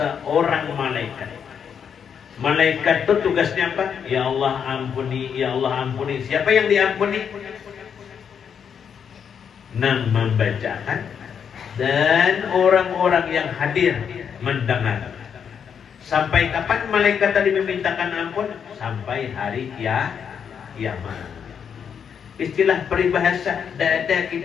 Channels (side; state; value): right; quieter; 7.5 dB